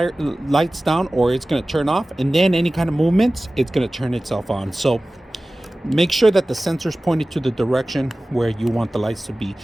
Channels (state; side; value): normal; both; correlation 0.97